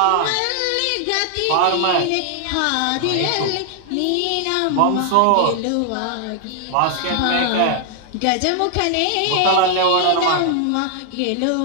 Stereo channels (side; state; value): both; different; correlation 0.00